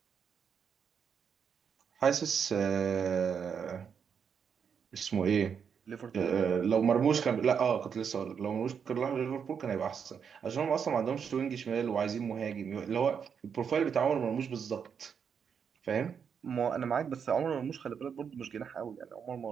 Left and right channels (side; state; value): left; quieter; 7.0 dB